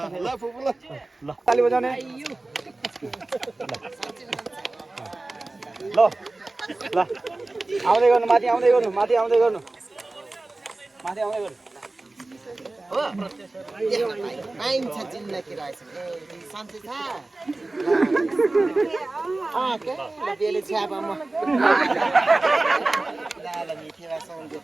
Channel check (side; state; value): left; quieter; 3.0 dB